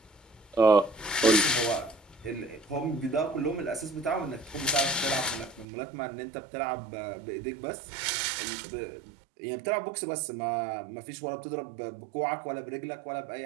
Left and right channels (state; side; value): drops out; left; at 5.7 s